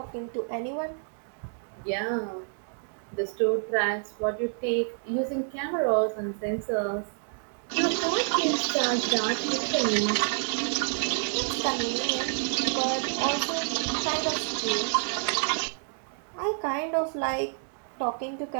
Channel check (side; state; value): left; silent; 59 dB below the other